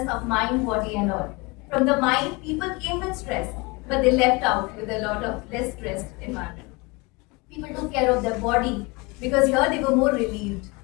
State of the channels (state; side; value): quieter; right; 26.6 dB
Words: of mind, body, and all. From the mind, people came with stress, but they left out with a lot of less stressed environment. People took care of their body because here they were more relieved,